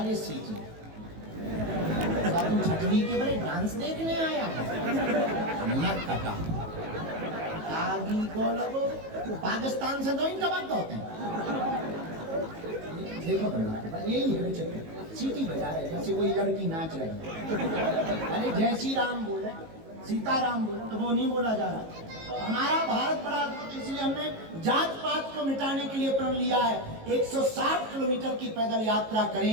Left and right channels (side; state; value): left; late; 18 ms